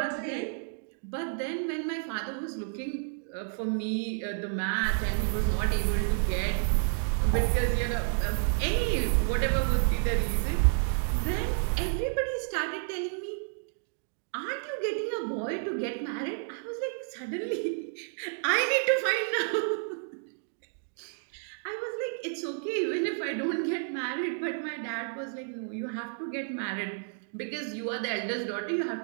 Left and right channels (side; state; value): left; silent; digital silence